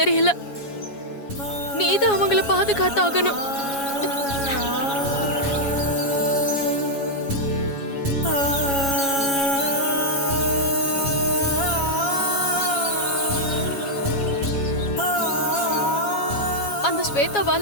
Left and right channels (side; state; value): right; late; 7.2 ms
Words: தெரியல. நீதான் அவங்கள பாதுகாத்தாகணும். அந்த